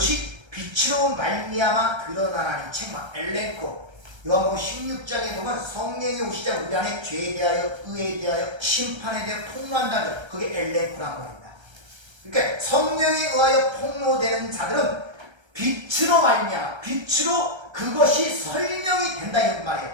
빛으로 말미암아 드러나나니. 책망, 엘렌코. 요한복음 16장에 보면 성령이 오시자 우리 안에 죄에 대하여, 의에 대하여, 심판에 대하여 폭로한다는 것, 그게 엘렌코란 말입니다. 그러니까 성령에 의하여 폭로되는 자들은 빛으로 말미암아, 빛으로 그것이 설명이 된다 이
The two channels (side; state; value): left; late; 1.3 ms